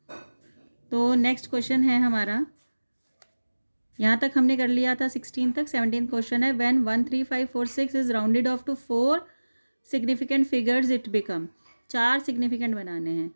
तो नेक्स्ट क्वेश्चन है हमारा, यहाँ तक हमने कर लिया था 16 तक। 17 क्वेश्चन है, when 1 3 5 4 6 is rounded off to 4 significant figures it become. 4 significant बनाने हैं।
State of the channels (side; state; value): both; inverted; correlation -1.00